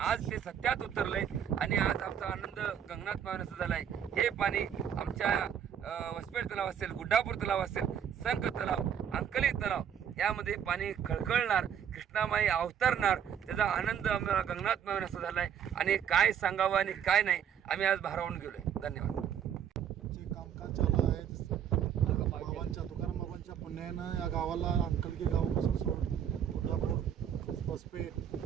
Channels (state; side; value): quieter; left; 8.8 dB